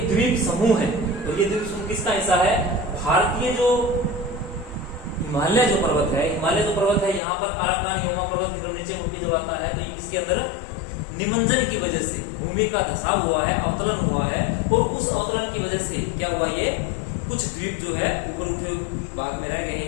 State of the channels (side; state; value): right; drops out; at 7.2 s